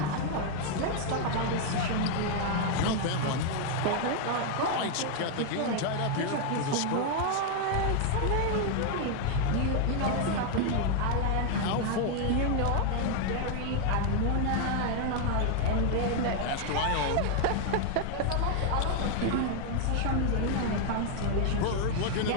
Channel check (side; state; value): both; different; correlation 0.00